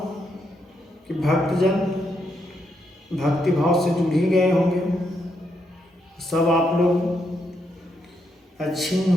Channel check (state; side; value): normal; both; correlation 0.79